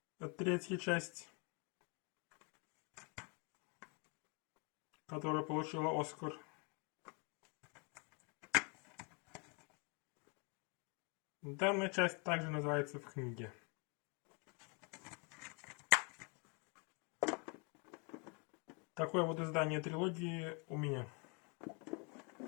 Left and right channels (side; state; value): right; quieter; 34.0 dB